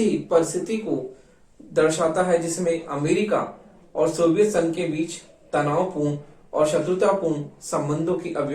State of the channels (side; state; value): both; identical; correlation 1.00